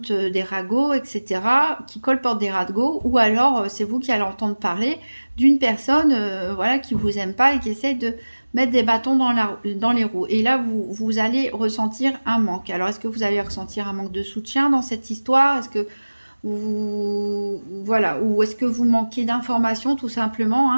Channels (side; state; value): both; inverted; correlation -1.00